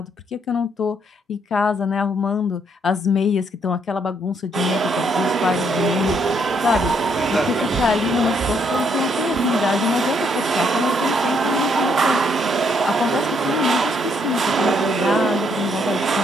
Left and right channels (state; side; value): normal; both; correlation 0.72